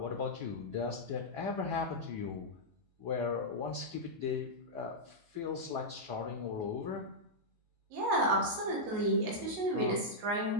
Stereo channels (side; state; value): left; late; 19 ms